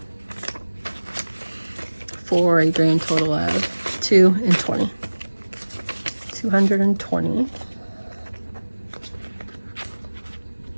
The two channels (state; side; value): inverted; both; correlation -1.00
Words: for a grand total of $220. 220.